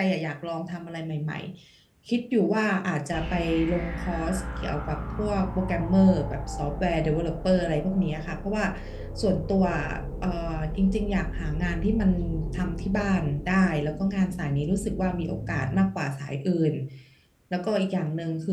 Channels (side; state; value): both; identical; correlation 1.00